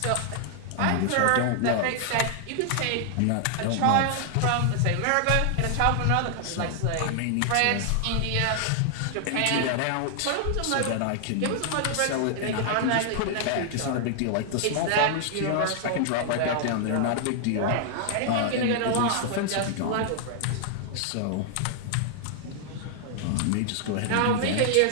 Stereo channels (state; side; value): different; both; correlation 0.00